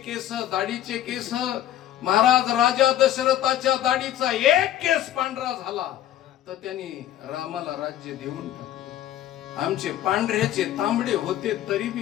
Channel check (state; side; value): quieter; right; 12.2 dB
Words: दाढीचे केस. महाराज राजा दशरथाच्या दाढीचा एक केस पांढरा झाला तर त्यांनी रामाला राज्य देऊन टाकलं. आमचे पांढऱ्याचे तांबडे होते तरी बी